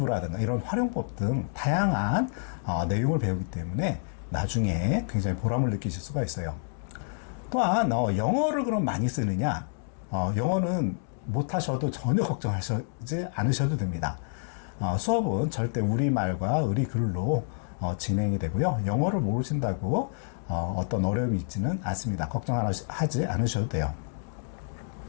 이런 활용법 등 다양한 내용을 배우기 때문에 나중에 굉장히 보람을 느끼실 수가 있어요. 또한 영어를 그럼 많이 쓰느냐? 영어는 못하셔도 전혀 걱정하지 않으셔도 됩니다. 수업은 절대 우리말과 의리글로 진행이 되고요. 영어를 모르신다고 어떤 어려움이 있지는 않습니다. 걱정하지 않으셔도 돼요.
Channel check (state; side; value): silent; right; digital silence